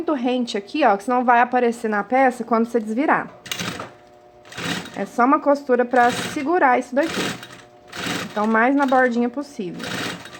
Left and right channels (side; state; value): both; identical; correlation 1.00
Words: rente aqui, ó, que senão vai aparecer na peça quando você desvirar. É só uma costura pra segurar isso daqui. Então, mais na bordinha possível.